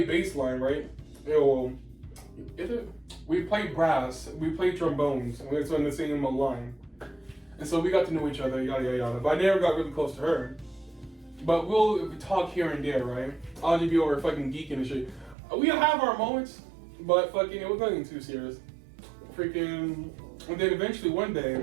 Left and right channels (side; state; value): left; drops out; at 15.4 s